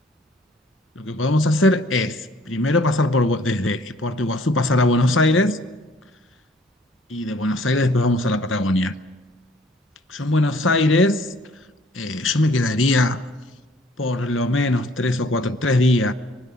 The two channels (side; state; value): both; normal; correlation 0.58